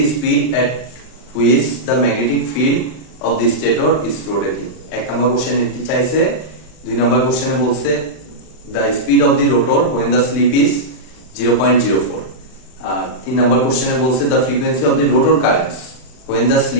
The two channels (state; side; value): late; right; 39 ms